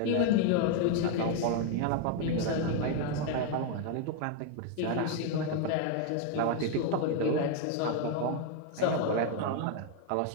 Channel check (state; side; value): different; both; correlation 0.01